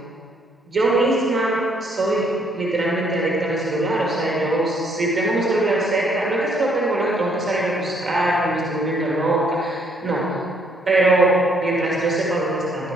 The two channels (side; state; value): both; normal; correlation 0.68